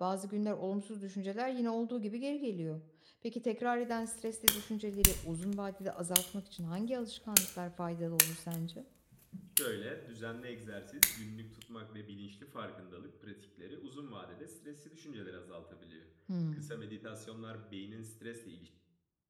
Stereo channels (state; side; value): identical; both; correlation 1.00